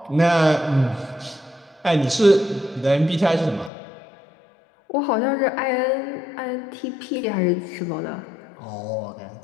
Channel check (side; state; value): right; drops out; at 3.7 s